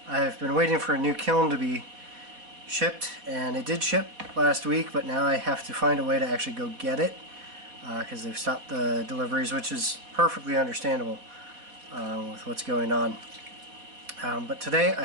been waiting for a new kiln to be shipped, and it did ship last week, but now I have to find a way to actually go get it because they've stopped the deliveries, which is perfectly understandable with what's going on. But today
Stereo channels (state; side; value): late; left; 4.1 ms